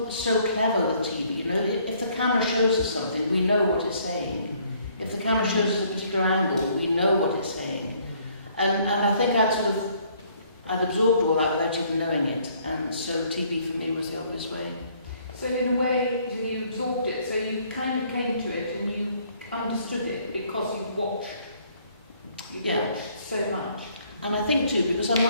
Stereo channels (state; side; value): inverted; both; correlation -0.63